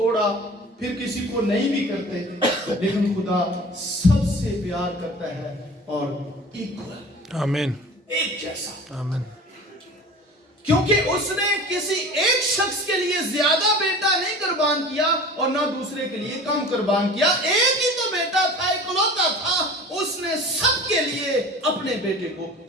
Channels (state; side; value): normal; both; correlation 0.40